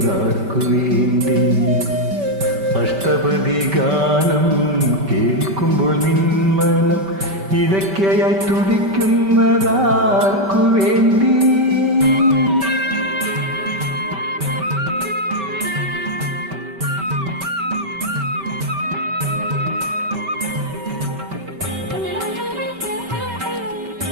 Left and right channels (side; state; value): left; late; 5.2 ms